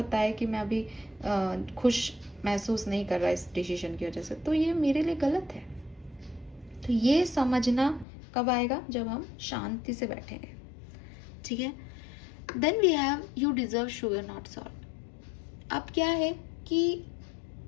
है कि मैं अभी खुश महसूस नहीं कर रहा इस डिसीजन की वजह से, तो ये मेरे लिए गलत है। तो ये समझना कब आएगा? जब हम शांति से बैठेंगे, ठीक है? Then we have you deserve sugar not salt. अब क्या है कि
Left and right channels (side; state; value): right; drops out; at 8.1 s